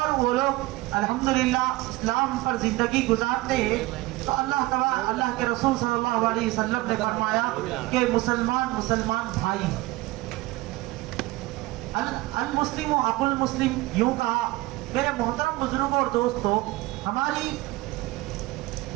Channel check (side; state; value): left; quieter; 19.6 dB